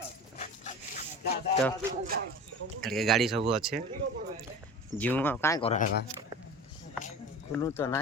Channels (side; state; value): both; normal; correlation 0.35